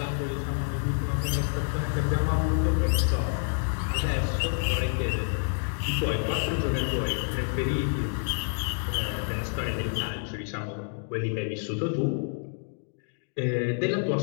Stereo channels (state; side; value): silent; right; 59 dB below the other